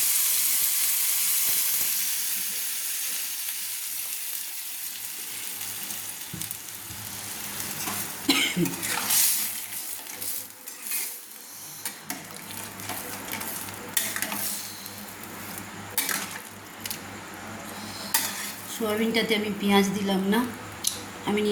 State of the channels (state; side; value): identical; both; correlation 1.00